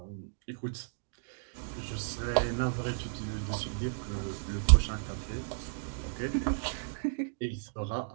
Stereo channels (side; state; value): left; silent; digital silence